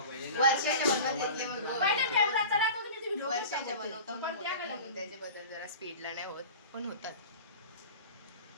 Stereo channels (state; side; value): inverted; both; correlation -0.36